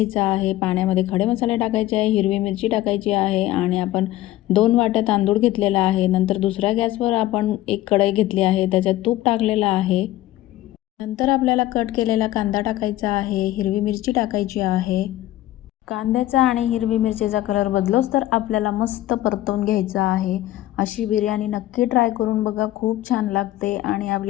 आहे. पाण्यामध्ये खडे मसाले टाकायचे आहे, हिरवी मिरची टाकायची आहे आणि आपण 2 वाट्या तांदूळ घेतलेला आहे. नंतर दुसऱ्या गॅसवर आपण एक कढई घेतली आहे, त्याच्यात तूप टाकलेलं आहे. नंतर आपल्याला कट केलेला कांदा टाकायचा आहे, हिरवी मिरची टाकायची आहे. कांद्याचा आणि हिरवी मिरचीचा कलर बदलोच तर आपल्याला मस्त परतवून घ्यायचा आहे. अशी बिर्याणी नक्की ट्राय करून बघा, खूप छान लागते आणि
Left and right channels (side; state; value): right; quieter; 15.2 dB